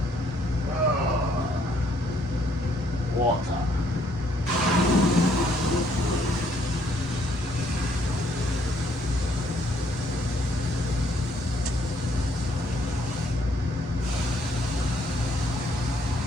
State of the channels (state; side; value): normal; both; correlation 0.68